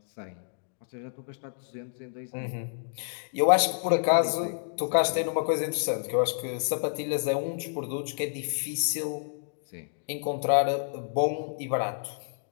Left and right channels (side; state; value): right; silent; digital silence